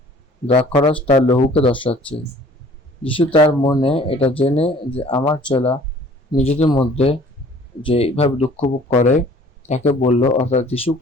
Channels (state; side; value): normal; both; correlation 0.52